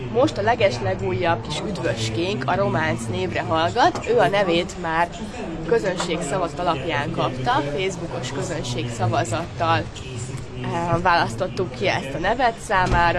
Most a legeslegújabb kis üdvöskénk a Románc névre hallgat, ő a nevét már közönségszavazat alapján kapta, Facebookos közönségszavazattal választottuk ki ezt a nevet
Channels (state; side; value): identical; both; correlation 1.00